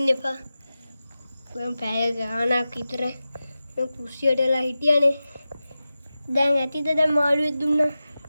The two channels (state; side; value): inverted; both; correlation -0.94